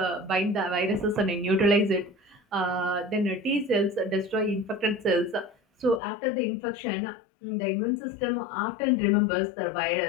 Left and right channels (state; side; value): drops out; right; at 6.0 s